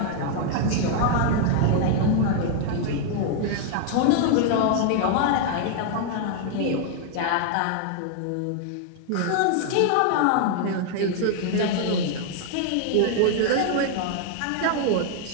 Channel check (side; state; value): both; different; correlation 0.00